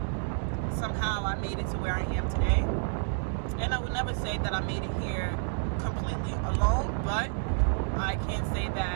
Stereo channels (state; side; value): silent; left; digital silence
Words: somehow I made it to where I am today. And I would never say that I made it here completely alone, but I can say